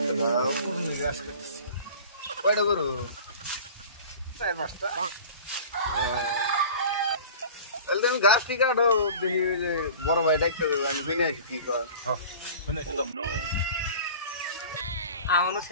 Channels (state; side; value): inverted; both; correlation -0.41